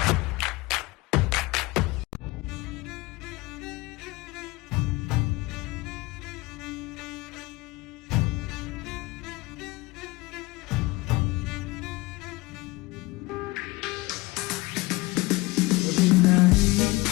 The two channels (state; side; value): quieter; right; 22.3 dB